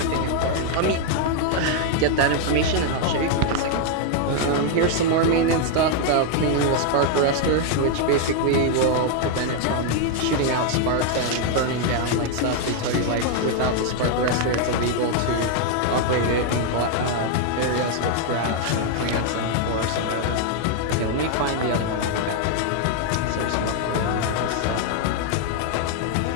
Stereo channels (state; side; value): different; both; correlation 0.00